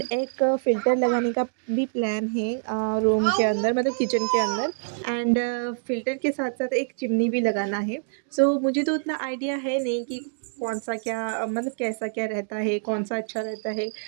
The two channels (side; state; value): left; silent; digital silence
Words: एक फ़िल्टर लगाने का भी प्लान है रूम के अंदर, मतलब किचन के अंदर। एंड फ़िल्टर के साथ साथ एक चिमनी भी लगाना है। सो मुझे तो उतना आइडिया है नहीं कि कौन सा क्या मतलब कैसा क्या रहता है, कौन सा अच्छा रहता है।